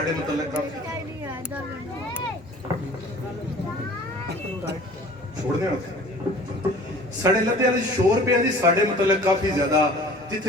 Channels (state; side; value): normal; both; correlation 0.47